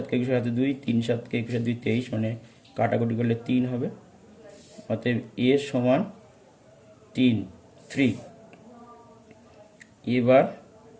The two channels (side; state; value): both; identical; correlation 1.00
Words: के 21 हाते 2 3 7 के 21 2 23 মানে কাটাকুটি করলে 3 হবে অতএব a সমান 3